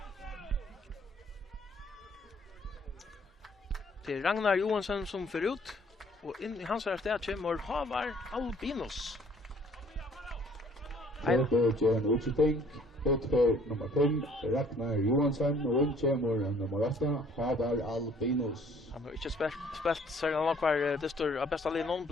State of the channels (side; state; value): both; normal; correlation 0.58